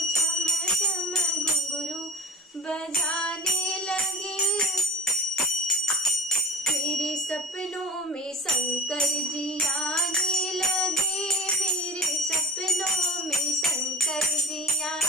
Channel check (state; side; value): normal; both; correlation 0.34